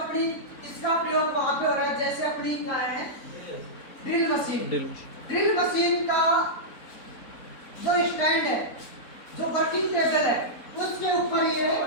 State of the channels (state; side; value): late; right; 4.0 ms